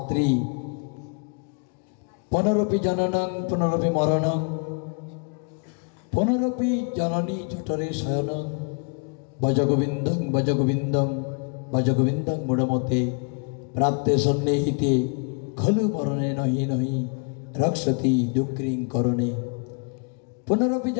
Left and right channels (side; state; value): right; quieter; 38.4 dB